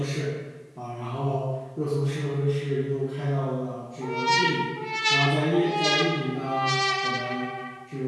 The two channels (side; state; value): both; identical; correlation 1.00